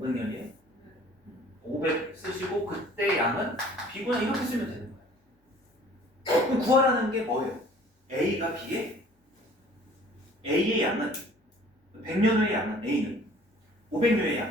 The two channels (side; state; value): both; normal; correlation 0.52